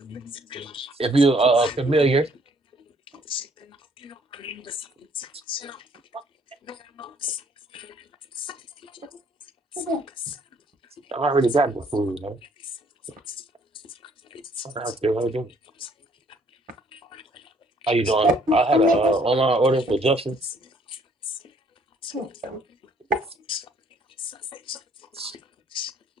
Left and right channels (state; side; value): normal; both; correlation 0.63